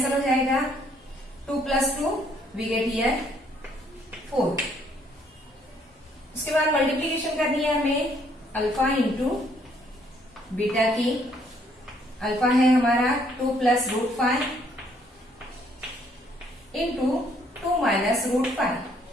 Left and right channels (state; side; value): normal; both; correlation 0.66